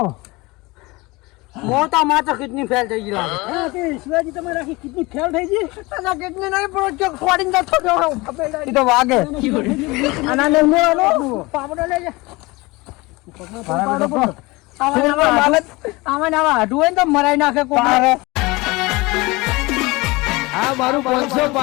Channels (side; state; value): right; quieter; 23.1 dB